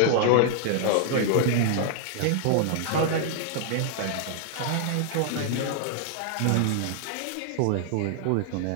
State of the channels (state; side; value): different; both; correlation -0.01